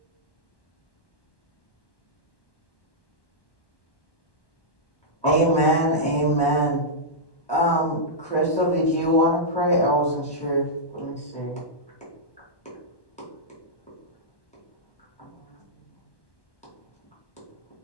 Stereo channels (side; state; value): right; late; 1.2 ms